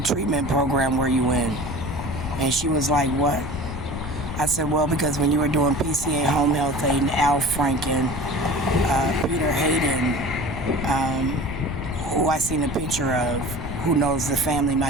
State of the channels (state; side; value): noise; left; rumble, 7 dB below the sound